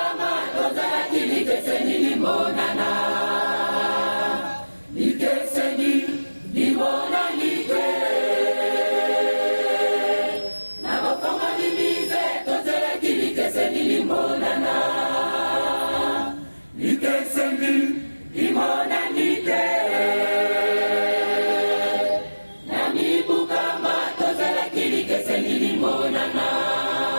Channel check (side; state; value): both; inverted; correlation -1.00